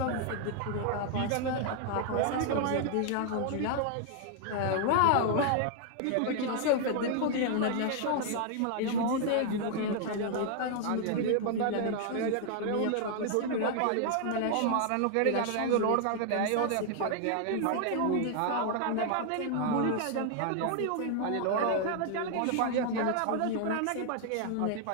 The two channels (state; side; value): different; both; correlation 0.00